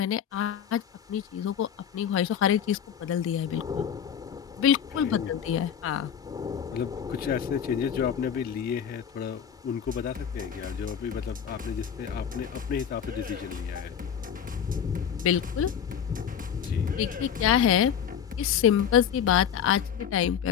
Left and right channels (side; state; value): right; quieter; 8.5 dB